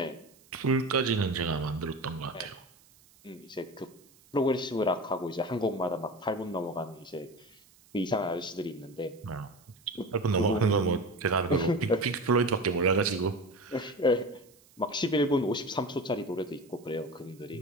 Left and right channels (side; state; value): right; noise; hiss, 28 dB below the sound